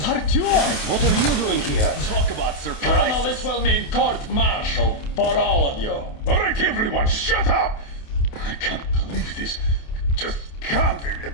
Artyom, what are you doing here? Talk about surprise. Colonel, this will mean court-martial for all of you. All right, everyone, shut up! I can't believe this. Just can't.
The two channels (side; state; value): right; late; 28 ms